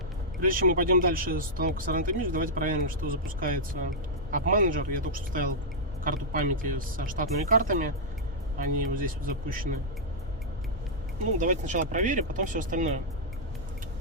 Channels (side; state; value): both; normal; correlation -0.09